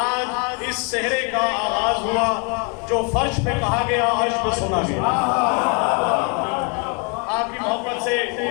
इस सेहरे का आगाज हुआ जो फर्श पे कहा गया, अर्श पे सुना गया। आपकी मोहब्बत से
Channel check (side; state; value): right; quieter; 34.5 dB